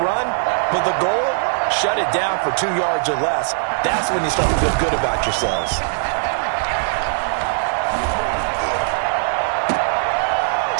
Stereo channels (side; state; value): left; silent; 61 dB below the other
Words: run, but the goal, shut it down for 2 yards or less. That's when you start to feel good about yourselves.